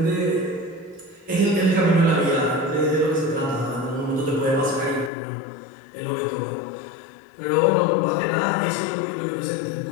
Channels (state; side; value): drops out; right; at 5.1 s